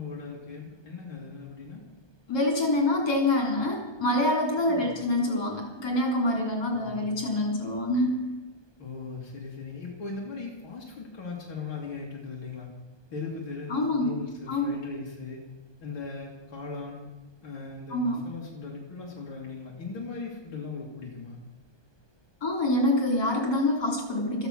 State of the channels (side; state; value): right; late; 1.2 ms